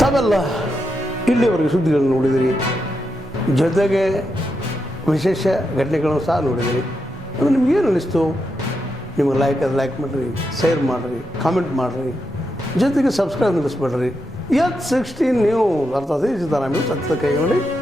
ತಾವೆಲ್ಲ ಇಲ್ಲಿವರೆಗೆ ಸುದ್ದಿಗಳನ್ನು ನೋಡಿದಿರಿ, ಜೊತೆಗೆ ವಿಶೇಷ ಘಟನೆಗಳನ್ನು ಸಹ ನೋಡಿದಿರಿ. ಅದು ನಿಮಗೇನು ಅನ್ನಿಸ್ತು? ನಿಮಗೆ ಲೈಕ್ ಮಾಡಿರಿ, ಶೇರ್ ಮಾಡಿರಿ, ಕಾಮೆಂಟ್ ಮಾಡಿರಿ, ಜೊತೆಗೆ ಸಬ್ಸ್ಕ್ರೈಬ್ ನಿಲ್ಲಿಸ್ಬೇಡ್ರಿ. H16 ನ್ಯೂಸ್ ಅರ್ಥಾತ್ ಸಿದ್ದರಾಮಯ್ಯ ಸತ್ಯದ ಕೈಗೊಂಡು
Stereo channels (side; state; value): both; normal; correlation 0.85